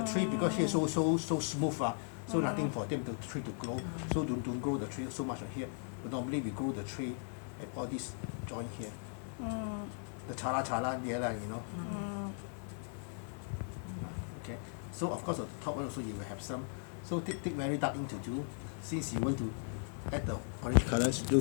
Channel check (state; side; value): silent; right; 53 dB below the other